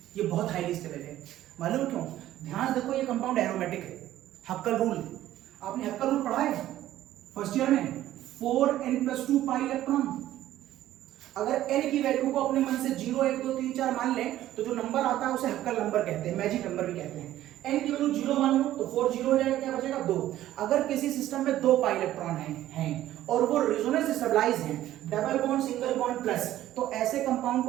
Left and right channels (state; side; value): quieter; left; 13.6 dB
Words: ये बहुत हाईली स्टेबल है। मालूम क्यों? ध्यान देखो, ये कंपाउंड एरोमेटिक है। हक्कल रूल, आपने हक्कल रूल पढ़ा है फर्स्ट ईयर में, 4n+2 पाई इलेक्ट्रॉन। अगर n की वैल्यू को अपने मन से 0 1 2 3 4 मान लें तो जो नंबर आता है उसे हक्कल नंबर कहते हैं, मैजिक नंबर भी कहते हैं। n की वैल्यू 0 मान लो तो 4 0 हो जाएगा, क्या बचेगा 2। अगर किसी सिस्टम में 2 पाई इलेक्ट्रॉन हैं और वो रेजोनेंस स्टेबलाइज हैं, double bond single bond plus, तो ऐसे कंपाउंड